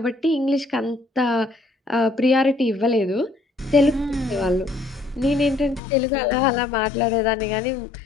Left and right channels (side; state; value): right; drops out; at 5.8 s